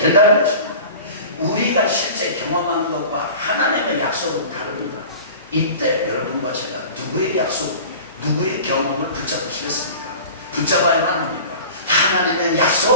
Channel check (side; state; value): both; inverted; correlation -0.39